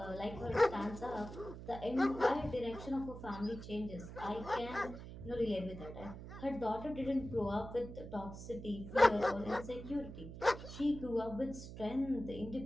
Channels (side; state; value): right; noise; hum, 11 dB below the sound